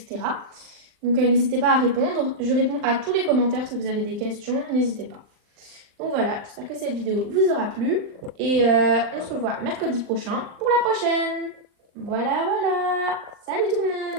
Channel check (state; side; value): late; left; 39 ms